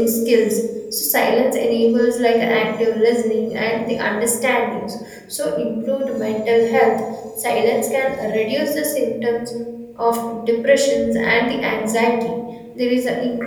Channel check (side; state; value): both; identical; correlation 1.00